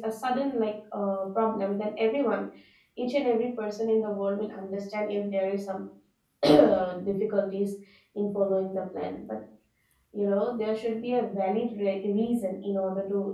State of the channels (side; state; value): both; identical; correlation 1.00